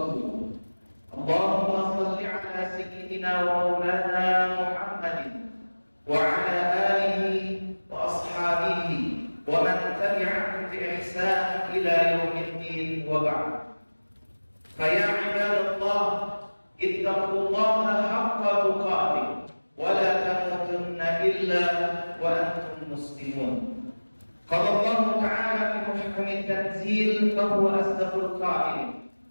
Allahumma shalli 'ala sayyidina wa maulana Muhammadin wa 'ala alihi wa ashabihi wa man tabi'ahum bi ihsan ila yaumiddin wa ba'd. Fa ya 'ibadallah ittaqullaha haqqa tuqatih wa la tamutunna illa wa antum muslimun. Qala Allah ta'ala fi muhkamit tanzil fa huwa asdaqul qa'ilin.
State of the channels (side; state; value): both; inverted; correlation -1.00